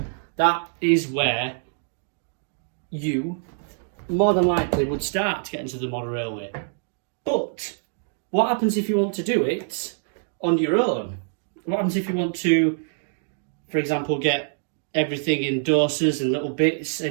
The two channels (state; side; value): silent; left; digital silence